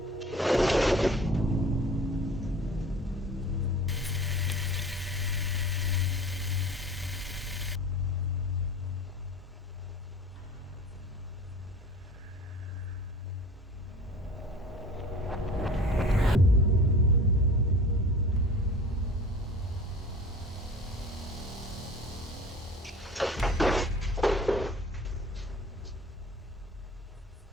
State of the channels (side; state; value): both; normal; correlation 0.42